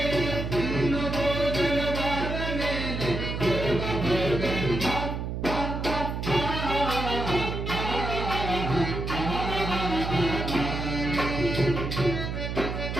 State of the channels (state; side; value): noise; right; hum, 4 dB below the sound